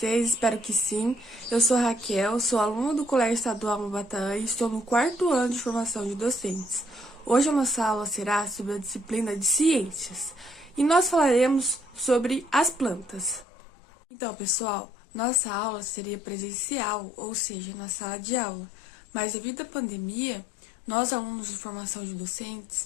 Espero que sim. Eu sou a Raquel, sou aluna do Colégio Estadual Maubatã e estou no 4º ano de formação de docentes. Hoje a nossa aula será sobre a disciplina de Ciências e nós falaremos sobre as plantas. Então pessoal, nossa aula seria presencial, ou seja, na sala de aula, mas devido à pandemia, nós alunos de formação de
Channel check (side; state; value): right; drops out; at 13.5 s